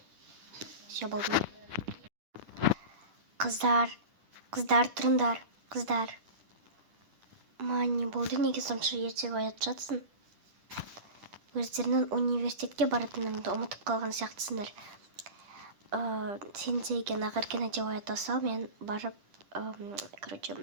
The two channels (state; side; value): late; left; 10 ms